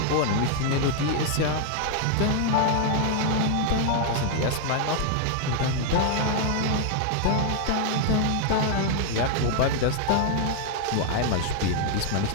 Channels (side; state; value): both; different; correlation 0.00